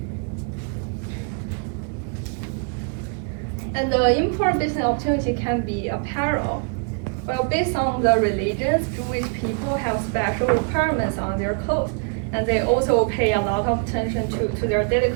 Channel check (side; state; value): left; quieter; 38.5 dB